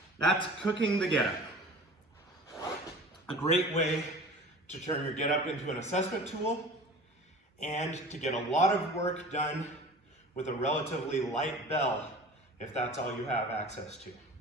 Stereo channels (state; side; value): normal; both; correlation 0.40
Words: That's cooking the get-up. A great way to turn your get-up into an assessment tool and to get a lot of work done with a relatively light bell if that's all you have access to.